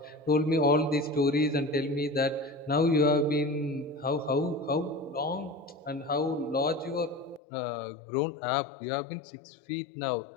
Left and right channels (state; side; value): drops out; right; at 7.4 s